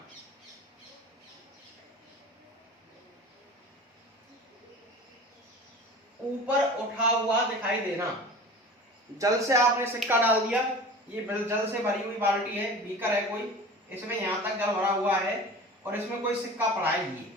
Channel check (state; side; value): normal; both; correlation 0.38